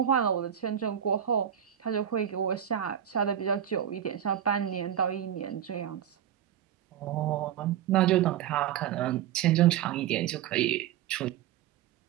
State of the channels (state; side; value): quieter; left; 10.1 dB